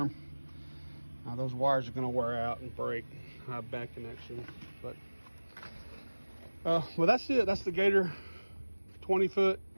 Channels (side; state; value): both; inverted; correlation -1.00